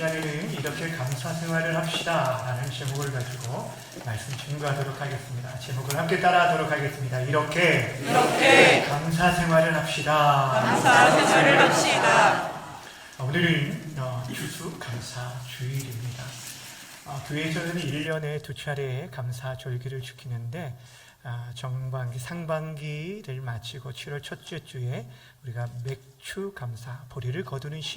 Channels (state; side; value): identical; both; correlation 1.00